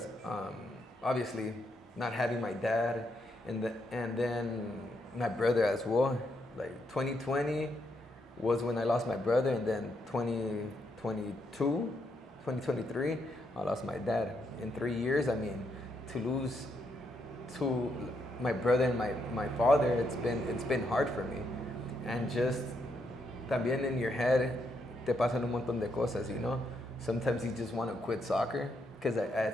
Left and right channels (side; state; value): both; normal; correlation 0.78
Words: obviously not having my dad. And then my brother as well. Like 2020 was when I lost my brother, and then 2023, I lost my dad. In 3 years, I mean, to lose my brother and my father, it's been hard for me. And just también in your head, te pasan un montón de cosas, Sometimes you just want to quit soccer, because